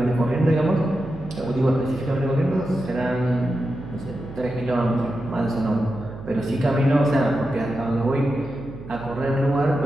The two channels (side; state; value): right; noise; hum, 14 dB below the sound